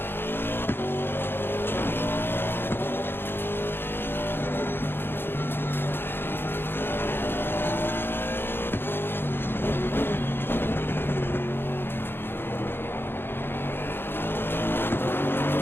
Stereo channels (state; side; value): late; right; 0.10 ms